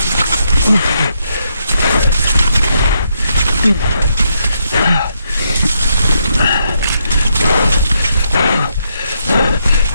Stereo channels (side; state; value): both; inverted; correlation -0.78